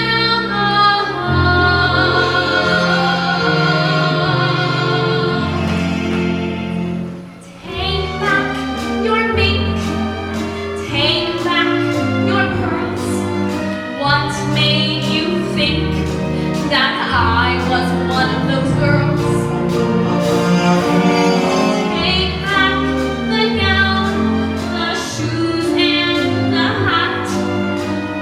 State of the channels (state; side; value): identical; both; correlation 1.00